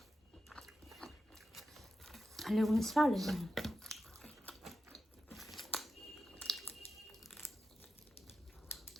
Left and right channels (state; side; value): normal; both; correlation 0.90